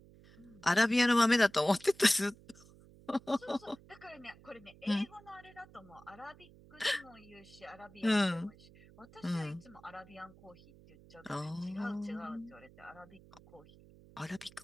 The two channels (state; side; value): noise; right; hum, 23 dB below the sound